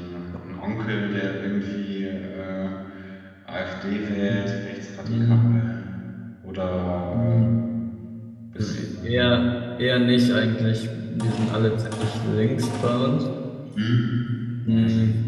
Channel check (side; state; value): both; identical; correlation 1.00